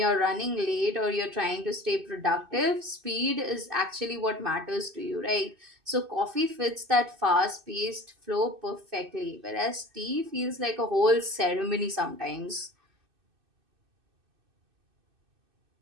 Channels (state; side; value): late; left; 2.6 ms